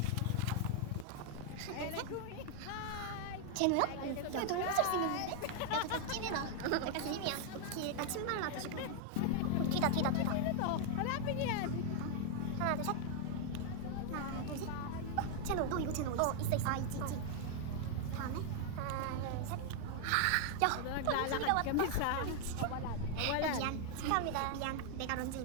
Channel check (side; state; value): both; different; correlation 0.00